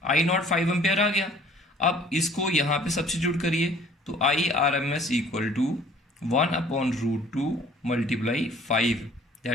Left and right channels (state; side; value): normal; both; correlation 0.54